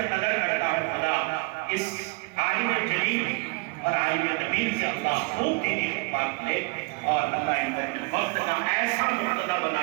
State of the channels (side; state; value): left; quieter; 28.3 dB